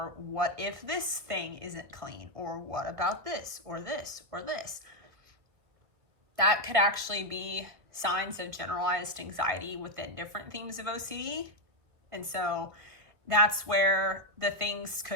what if this thing isn't clean? Or what about this or this or this? That could actually be signs of generalized anxiety within different themes of OCD. And so that's where the things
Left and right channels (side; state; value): left; late; 1.5 ms